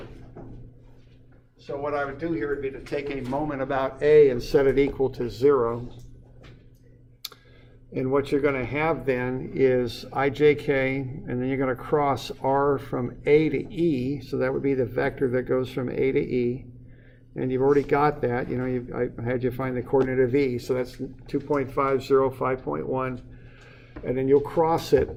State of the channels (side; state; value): both; identical; correlation 1.00